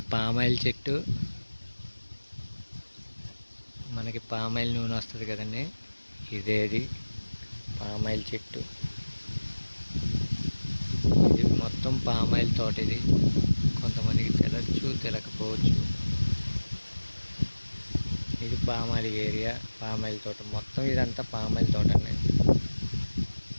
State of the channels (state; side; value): inverted; both; correlation -1.00